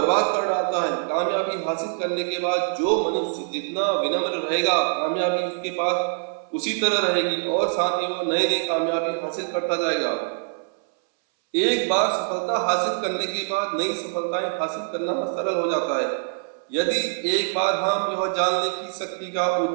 कर डालता है। कामयाबी हासिल करने के बाद जो मनुष्य जितना विनम्र रहेगा, कामयाबी उसके पास उसी तरह रहेगी और साथ ही वो नई नई कामयाबी हासिल करता जाएगा। एक बार सफलता हासिल करने के बाद नई सफलताएं हासिल करना सरल हो जाता है। यदि एक बार हम यह जानने की शक्ति का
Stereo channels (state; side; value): silent; left; 62 dB below the other